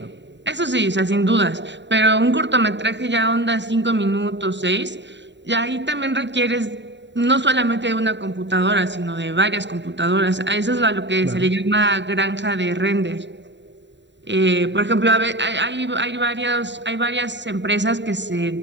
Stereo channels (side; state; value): left; late; 0.52 ms